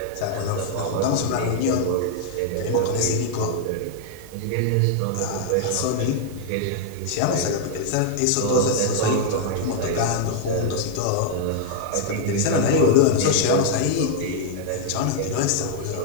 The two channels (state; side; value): different; both; correlation -0.01